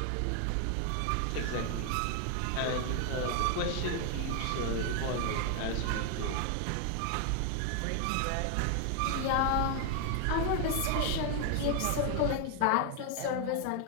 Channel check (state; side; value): different; both; correlation 0.00